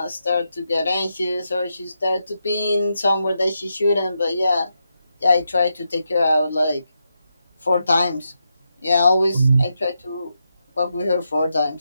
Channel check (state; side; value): inverted; both; correlation -0.85